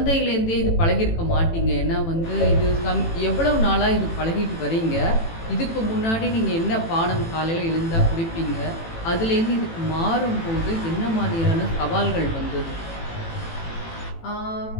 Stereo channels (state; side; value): late; right; 18 ms